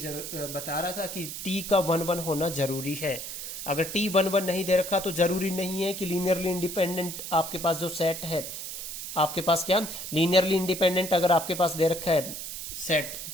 रहा था कि T का 1, 1 होना जरूरी है। अगर T 1, 1 नहीं दे रखा तो जरूरी नहीं है कि लीनियरली इंडिपेंडेंट आपके पास जो सेट है, आपके पास क्या लीनियरली इंडिपेंडेंट अगर आपके पास दे रखा है सेट,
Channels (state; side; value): noise; right; hiss, 7 dB below the sound